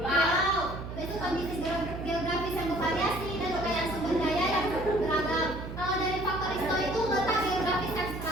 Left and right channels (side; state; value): right; noise; hum, 8 dB below the sound